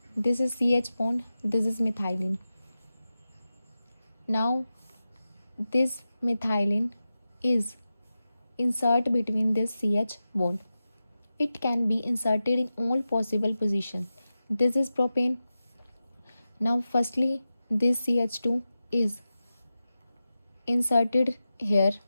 This is CH bond, this is methylene. Now this methylene is insert between this CH bond. It can be inserted in all possible positions. This is propane. Now firstly this CH2 is inserted here,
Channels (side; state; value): both; inverted; correlation -0.93